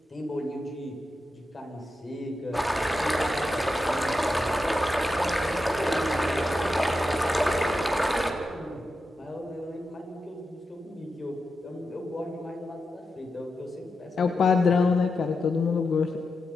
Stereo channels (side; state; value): both; normal; correlation 0.88